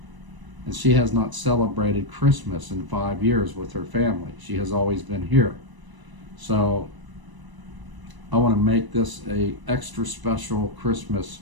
And she has not celebrated Christmas in 5 years with her family. She has always been here. So I want to make this a extra special Christmas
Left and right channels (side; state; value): left; late; 1.0 ms